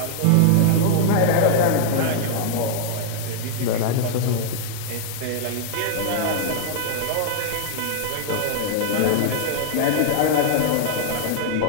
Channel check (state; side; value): different; both; correlation -0.01